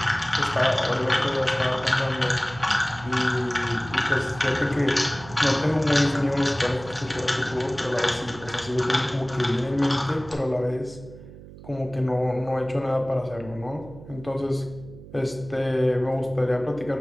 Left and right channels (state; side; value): noise; right; hum, 17 dB below the sound